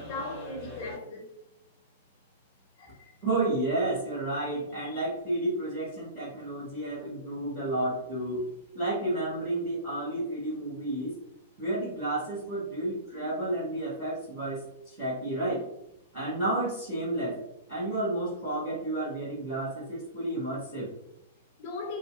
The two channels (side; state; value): both; inverted; correlation -0.34